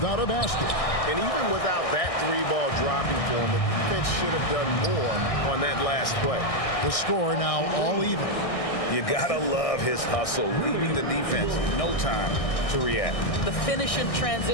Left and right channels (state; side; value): late; right; 1.6 ms